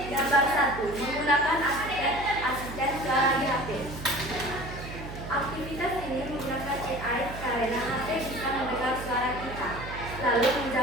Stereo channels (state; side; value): noise; right; hum, 10 dB below the sound